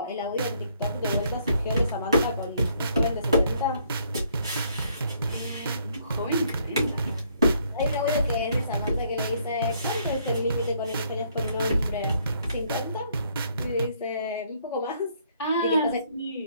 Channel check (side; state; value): both; inverted; correlation -0.67